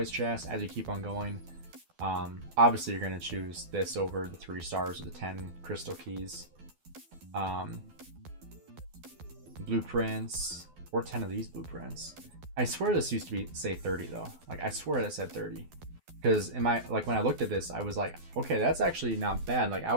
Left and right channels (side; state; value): left; late; 12 ms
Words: chest as you keep on going. Obviously, you're going to choose this over the 3 stars or the 10 crystal keys. Blueprints, or 10 of these blueprints. I swear this used to be, say, 30 though. Like, I swear that said 30. Because in my, like, when I looked at this, I was like, okay, that's actually not bad. Like, I